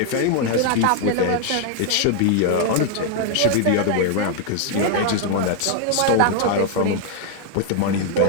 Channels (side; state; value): both; different; correlation 0.00